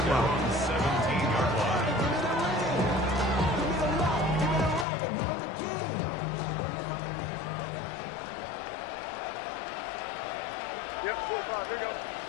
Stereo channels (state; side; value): drops out; right; at 4.9 s